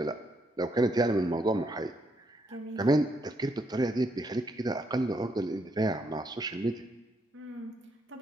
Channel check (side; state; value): both; normal; correlation 0.75